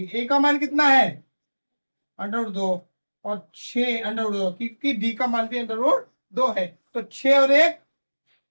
ए का मान कितना है अंडर रूट 2 और 6 अंडर रूट 2, क्योंकि डी का मान भी अंडर रूट 2 है, तो 6 और 1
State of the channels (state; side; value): inverted; both; correlation -1.00